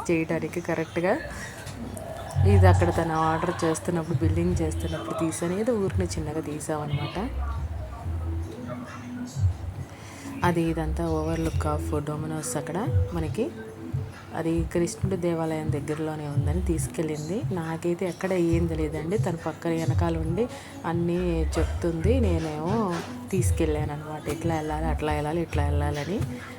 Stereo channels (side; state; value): both; identical; correlation 1.00